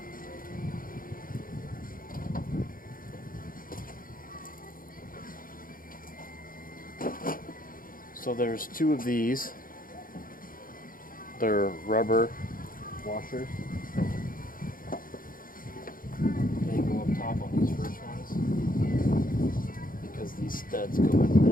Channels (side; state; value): right; late; 0.41 ms